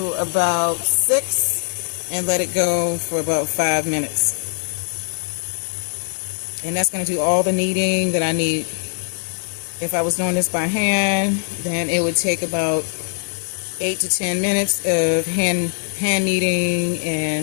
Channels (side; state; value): right; silent; 65 dB below the other